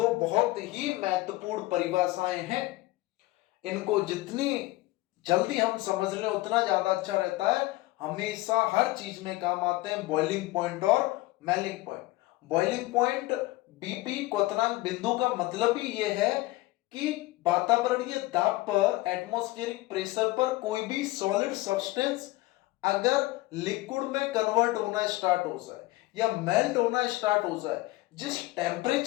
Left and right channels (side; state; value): right; quieter; 19.5 dB